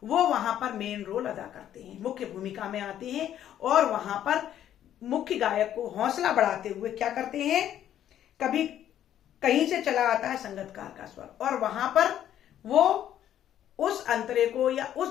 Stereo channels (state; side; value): quieter; right; 11.0 dB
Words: वो वहां पर मेन रोल अदा करते हैं, मुख्य भूमिका में आते हैं और वहां पर मुख्य गायक को हौसला बढ़ाते हुए क्या करते हैं, कभी कहीं से चला आता है संगतकार का स्वर और वहां पर वो उस अंतरे को या